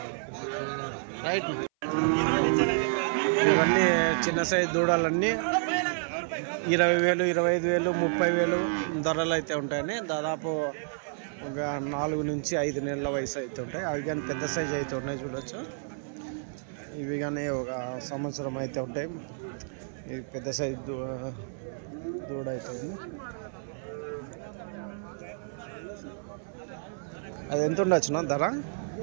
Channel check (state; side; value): silent; left; 56 dB below the other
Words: రైట్. ఇవన్నీ చిన్న సైజు దూడలన్నీ 20,000, 25,000, 30,000 ధరలు అయితే ఉంటాయని. దాదాపు ఒక 4 నుంచి 5 నెలల వయసు అయితే ఉంటాయి. అవి కానీ పెద్ద సైజు అయితే ఉన్నాయి చూడొచ్చు. ఇవి కానీ ఒక సంవత్సరం అయితే ఉంటాయి. ఇది పెద్ద సైజు దూడ అయితే ఉంది. అది ఎంత ఉండొచ్చునా ధర?